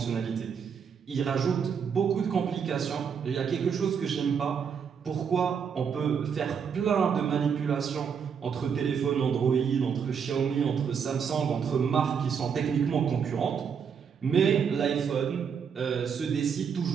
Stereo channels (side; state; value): left; quieter; 6.9 dB